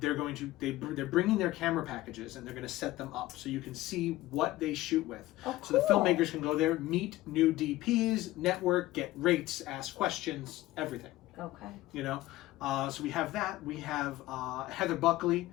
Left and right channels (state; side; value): quieter; right; 17.0 dB